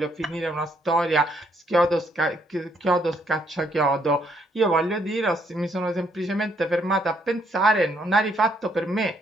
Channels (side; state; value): both; normal; correlation 0.71